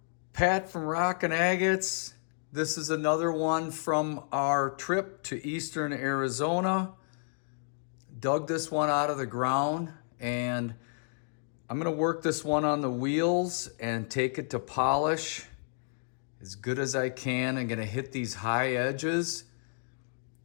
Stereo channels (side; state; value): right; silent; digital silence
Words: Pat from Rockin' Agates. This is another one from our trip to eastern Arizona. Dug this one out of the ground and I'm gonna work this one on the wheels and take it to polish as good as I can. I'm gonna hit these high edges,